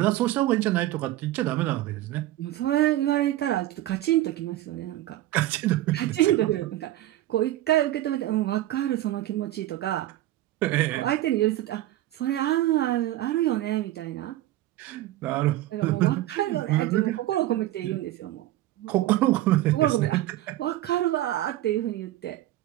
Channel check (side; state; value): left; quieter; 14.8 dB